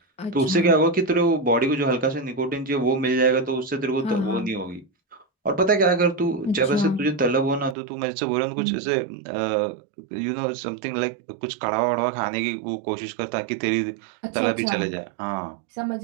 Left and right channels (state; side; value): drops out; left; at 7.8 s